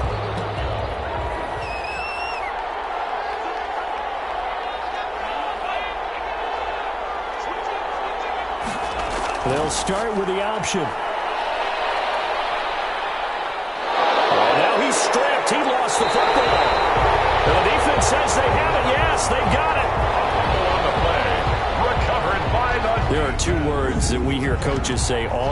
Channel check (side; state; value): both; identical; correlation 1.00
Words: They'll start with the option. And now he's stripped. He lost the football. And the defense says they have it. Yes, they got it. On the play. Recovered by the... There are 2 words that we hear coaches say